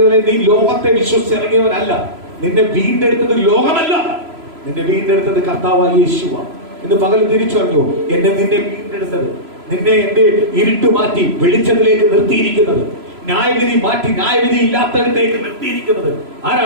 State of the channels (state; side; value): late; left; 3.0 ms